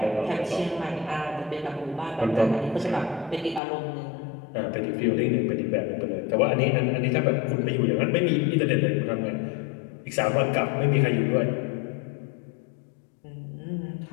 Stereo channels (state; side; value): drops out; right; at 3.6 s